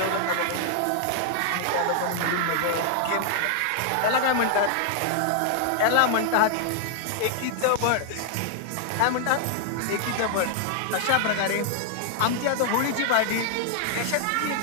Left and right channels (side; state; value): both; different; correlation 0.00